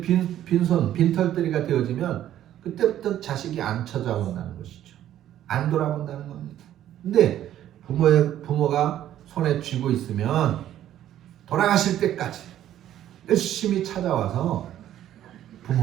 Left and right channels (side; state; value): left; quieter; 11.9 dB